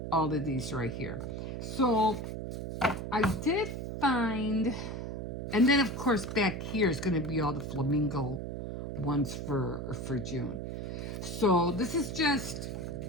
right here. So I did find, and then of course back here is going to be all the flamingo ones for June. So this is just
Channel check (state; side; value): noise; right; hum, 5 dB below the sound